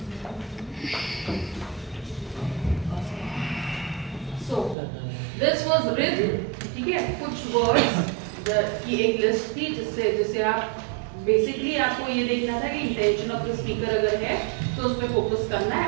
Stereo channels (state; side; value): drops out; left; at 4.8 s